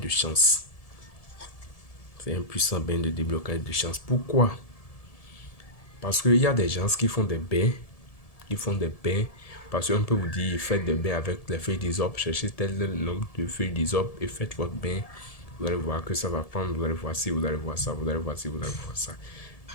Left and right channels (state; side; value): late; right; 1.7 ms